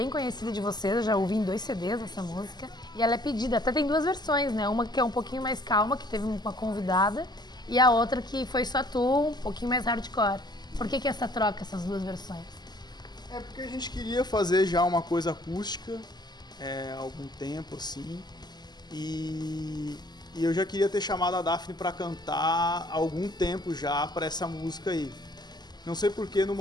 conhecida de vocês, eu já ouvi em 2 CDs essa música. E ela é pedida, até tem 2 versões, né? Uma que é um pouquinho mais calma, que teve uma convidada, e a outra que foi só tu, um pouquinho mais hardcore. Por que essa troca, essas 2 versões? É porque a gente queria fazer já uma coisa acústica há algum tempo, assim. E eu já queria ter chamado a Daphne pra cantar há algum tempo já pra essa música aí. Não sei porque no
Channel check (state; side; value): late; right; 0.20 ms